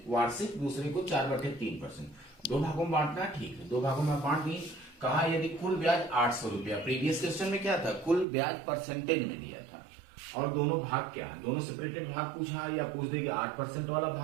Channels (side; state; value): left; drops out; at 8.2 s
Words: वार्षिक, दूसरे को 4/3%। 2 भागों में बांटना है, ठीक है, 2 भागों में बांट दी। कहा यदि कुल ब्याज 800 रुपया, प्रीवियस क्वेश्चन में क्या था? कुल ब्याज परसेंटेज में दिया था, और दोनों भाग क्या है, दोनों सेपरेटेड भाग पूछा है, या पूछ दे कि 8% वाला